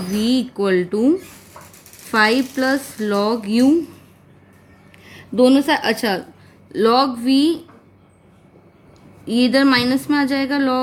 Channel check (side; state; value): both; identical; correlation 1.00